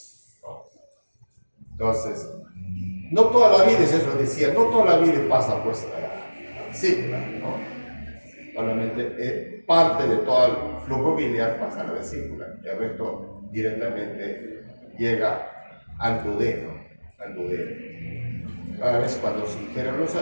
¿no? Entonces, no toda la bilis, eso decía, no toda la bilis pasa pues a la vesícula, ¿no? Solamente parte de todo el flujo biliar pasa a la vesícula, y el resto directamente llega al duodeno, Cada vez cuando se ingieren los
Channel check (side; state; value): both; inverted; correlation -1.00